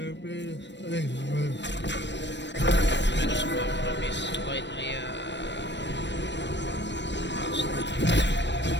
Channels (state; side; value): late; right; 0.52 ms